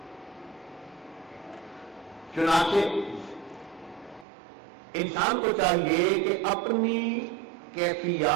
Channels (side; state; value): left; drops out; at 4.2 s